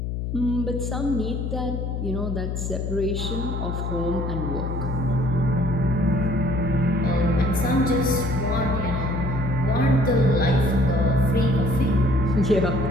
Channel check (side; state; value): left; noise; hum, 3 dB below the sound